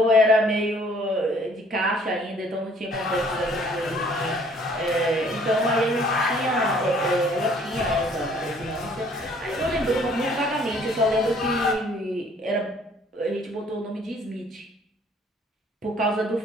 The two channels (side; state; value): both; normal; correlation 0.59